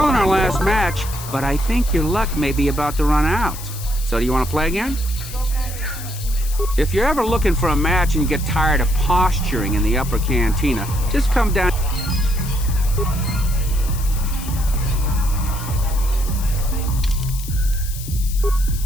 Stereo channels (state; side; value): noise; left; hiss, 12 dB below the sound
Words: in our last match, but I think your luck may be about to run out. So do you want to play again? If you're ever looking for a match and you get tired of posturing in the upper cantina, just come down.